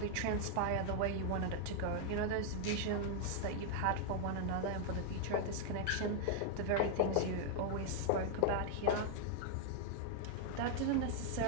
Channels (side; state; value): both; different; correlation 0.00